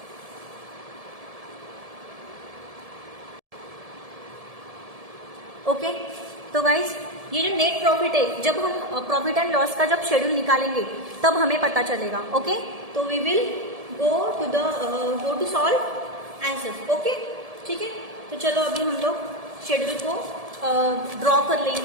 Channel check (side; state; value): left; late; 1.7 ms